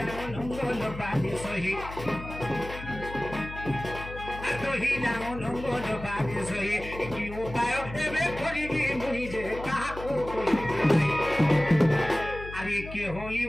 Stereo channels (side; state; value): left; noise; hum, 11 dB below the sound